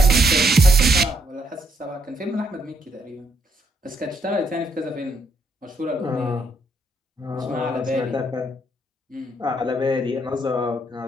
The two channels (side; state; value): both; normal; correlation 0.74